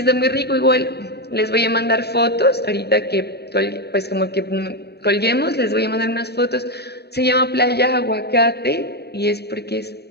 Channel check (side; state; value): right; late; 0.48 ms